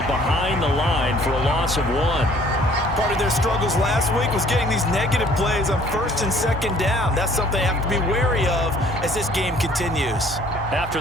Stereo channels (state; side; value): normal; both; correlation 0.57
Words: behind the line for a loss of 1. Part of their struggles last week was getting these negative plays on 1st and 2nd down. That's something they have to be wary of as this game continues. After